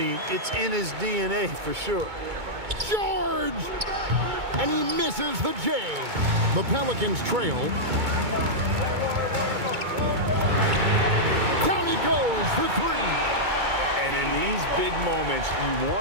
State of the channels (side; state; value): left; late; 2.2 ms